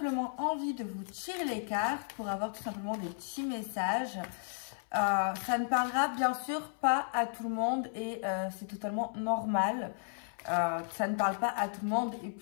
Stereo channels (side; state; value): right; silent; 55 dB below the other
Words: envie de vous tirer les cartes pour avoir tout simplement des petits messages. Ça ne parlera bien sûr pas à tout le monde et c'est totalement normal. Ça ne parle pas à tout le monde et